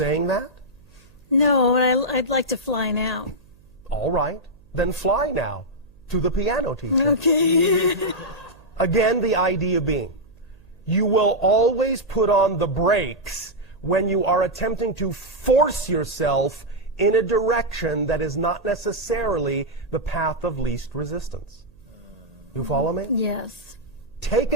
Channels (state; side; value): noise; right; hum, 28 dB below the sound